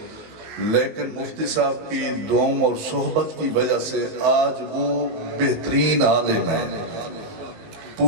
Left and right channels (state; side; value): late; left; 19 ms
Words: لیکن مفتی صاحب کی دعاؤں اور صحبت کی وجہ سے آج وہ بہترین عالم ہیں،